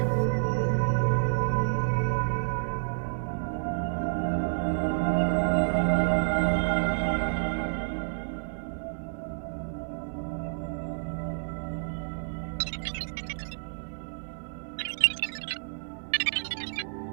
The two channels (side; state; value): left; silent; digital silence